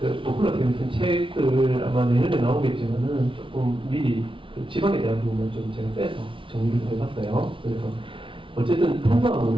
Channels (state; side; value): late; left; 0.25 ms